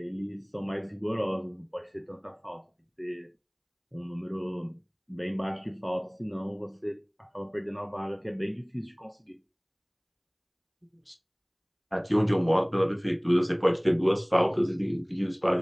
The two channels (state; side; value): identical; both; correlation 1.00